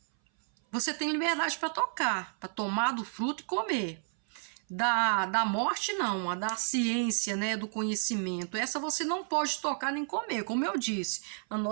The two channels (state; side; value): silent; left; 57 dB below the other